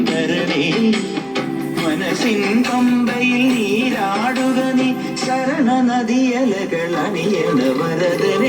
തരണേ മനസ്സിൻ പമ്പയിൽ നീരാടുക നീ ശരണ നദിയലകൾ അണിയണ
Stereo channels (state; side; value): identical; both; correlation 1.00